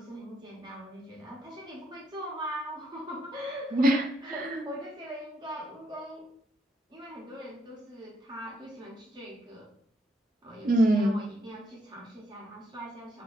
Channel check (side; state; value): both; normal; correlation 0.75